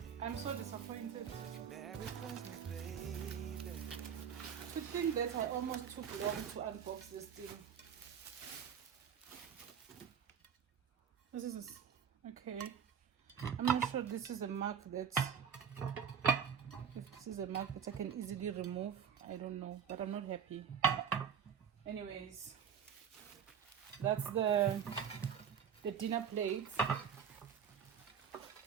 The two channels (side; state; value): left; quieter; 7.8 dB